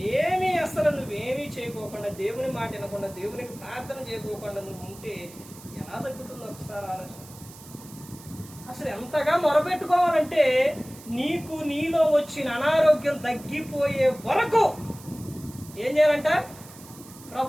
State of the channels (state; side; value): noise; right; hiss, 19 dB below the sound